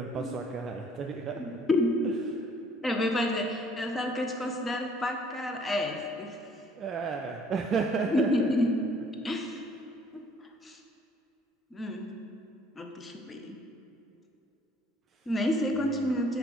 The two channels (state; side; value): normal; both; correlation 0.59